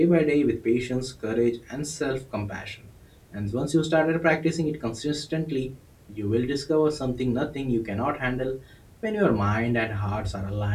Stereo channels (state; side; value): identical; both; correlation 1.00